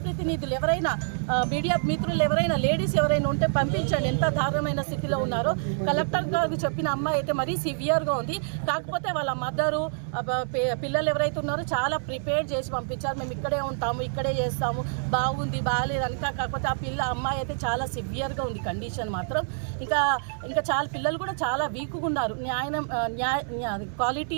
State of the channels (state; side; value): silent; left; 60 dB below the other